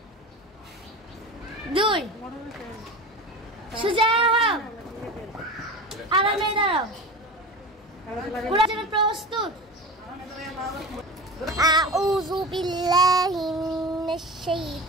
2 সোজা হও, আরামে দাঁড়াও। কোরআন জন্য প্রস্তুত। أعوذ بالله من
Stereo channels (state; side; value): normal; both; correlation 0.31